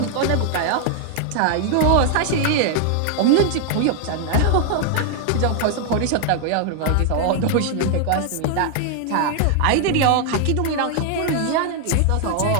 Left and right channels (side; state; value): both; different; correlation 0.00